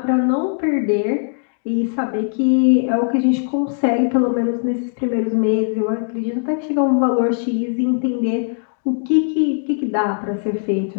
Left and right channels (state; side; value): silent; right; digital silence